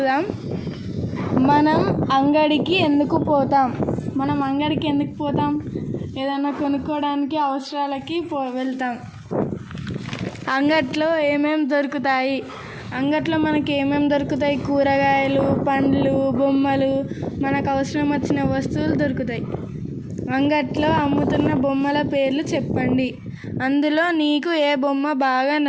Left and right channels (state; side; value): identical; both; correlation 1.00